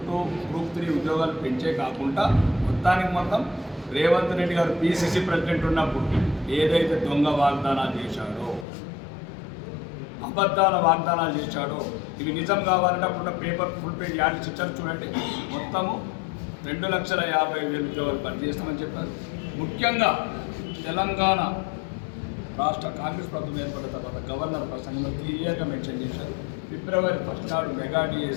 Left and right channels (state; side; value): drops out; right; at 8.7 s